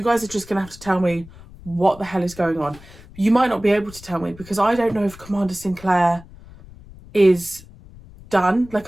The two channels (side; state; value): left; noise; rumble, 20 dB below the sound